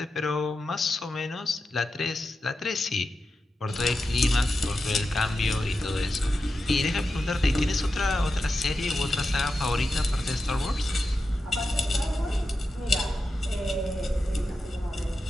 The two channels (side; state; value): both; normal; correlation 0.90